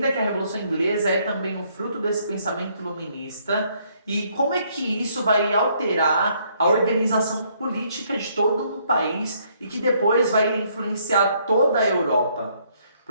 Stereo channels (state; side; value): inverted; both; correlation -0.68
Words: que a Revolução Inglesa é também um fruto desse pensamento iluminista e como é que isso vai alterar a organização política de todo um país e que depois vai influenciar toda a Europa.